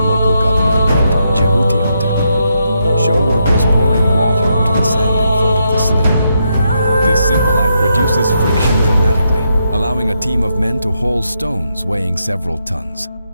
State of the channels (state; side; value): inverted; both; correlation -0.80